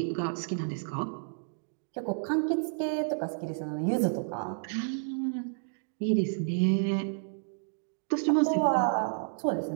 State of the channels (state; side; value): silent; left; digital silence